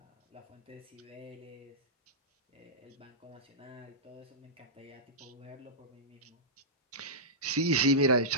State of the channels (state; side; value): normal; both; correlation -0.15